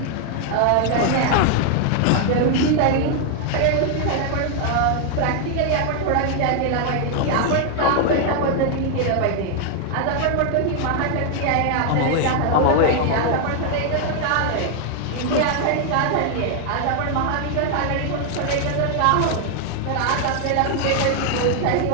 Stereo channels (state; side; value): different; both; correlation 0.00